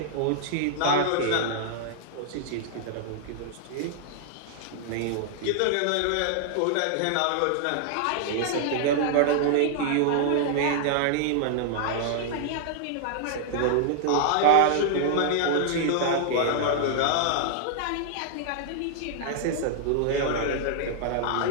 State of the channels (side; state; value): both; different; correlation -0.01